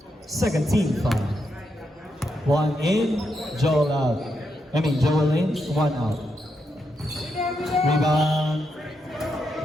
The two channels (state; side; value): normal; both; correlation 0.82